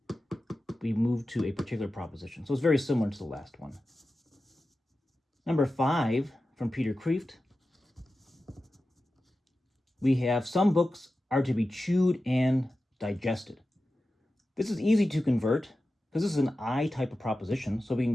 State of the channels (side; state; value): both; normal; correlation 0.93